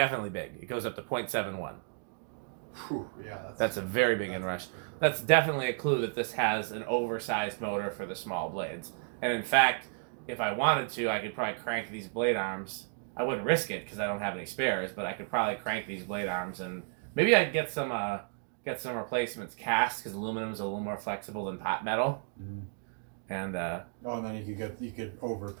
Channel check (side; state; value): left; silent; 56 dB below the other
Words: big. It goes up to 0.71. Whew, yeah, that's a very big inrush. That's definitely a clue that this has an oversized motor for the small blades. And in fact, if I wanted to, I could probably crank these blade arms. I wouldn't risk it because I don't have any spares, but I could probably crank these blade arms, and maybe I'd get some replacements cast because aluminum is a little more flexible than pot metal. Mm-hmm. And and then you could over